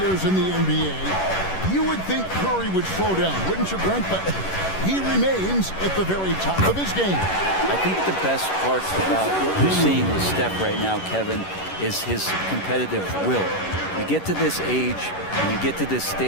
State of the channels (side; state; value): right; late; 11 ms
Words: in the NBA, you would think Curry would slow down, wouldn't you, Brent? But he remains at the very top of his game. I think the best part about what we're seeing with Steph right now, Kevin, is his competitive will. You get to this age, and you get to this